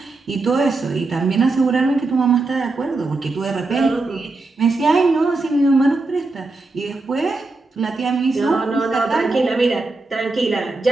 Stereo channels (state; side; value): quieter; left; 3.4 dB